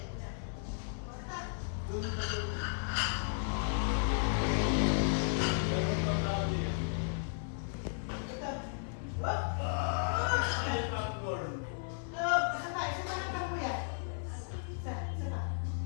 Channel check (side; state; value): right; silent; 55 dB below the other